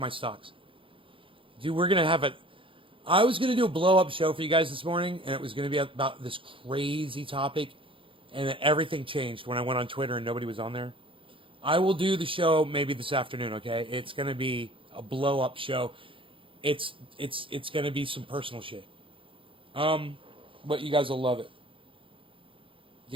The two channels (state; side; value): late; left; 0.25 ms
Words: stocks. Dude, we're going to have I was going to do a blow-up show for you guys this morning, and it was going to be about this crazy topic, and then everything changed when I went on Twitter and nobody was on there. I will do the show maybe this afternoon, okay? It's going to be a blow-up show. It's going to be some personal shit. But you guys will love it.